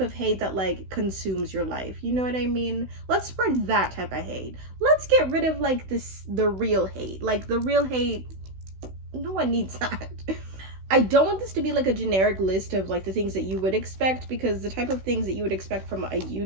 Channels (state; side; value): late; left; 16 ms